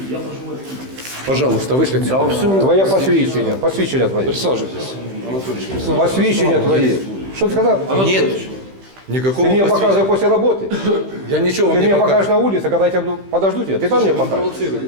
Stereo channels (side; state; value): left; late; 15 ms